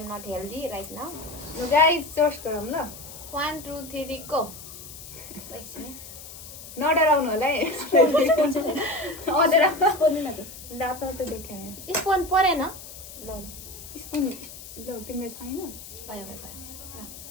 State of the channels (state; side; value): noise; left; hiss, 14 dB below the sound